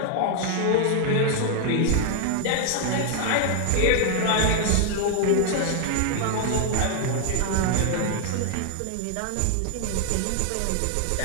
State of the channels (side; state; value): both; different; correlation 0.00